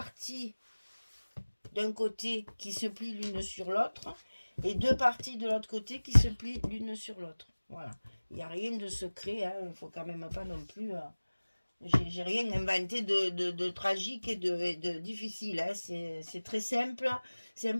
d'un côté qui se plient l'une sur l'autre et 2 parties de l'autre côté qui se plient l'une sur l'autre. Voilà. Il n'y a rien de secret, hein. Il ne faut quand même pas non plus... j'ai rien inventé de tragique et de difficile, hein. C'est très simple.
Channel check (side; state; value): both; inverted; correlation -1.00